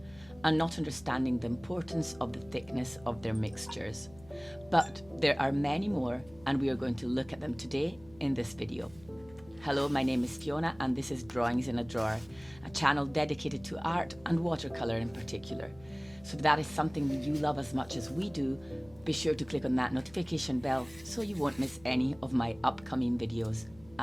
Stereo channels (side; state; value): left; noise; hum, 23 dB below the sound